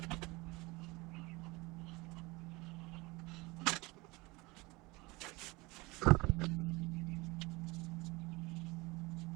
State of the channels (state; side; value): quieter; left; 23.5 dB